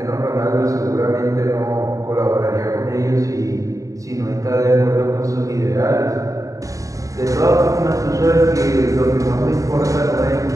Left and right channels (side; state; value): left; late; 0.16 ms